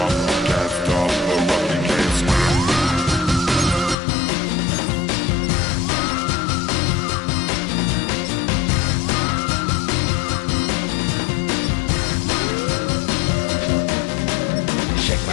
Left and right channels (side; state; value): right; drops out; at 4.0 s